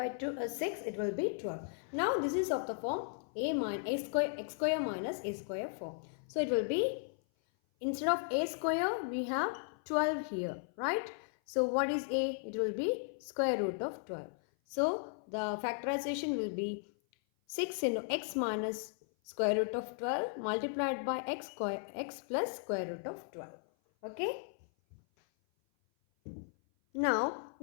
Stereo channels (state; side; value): silent; right; 54 dB below the other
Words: 6, it will be 12. Now this is of the form x square minus a square form. So it will be, instead of a square we have 12 here. Right? So what is a? It will be square root of 12. So the factorization will be 6 into x minus square root of 12 multiplied by x plus square root of 12. Okay. Now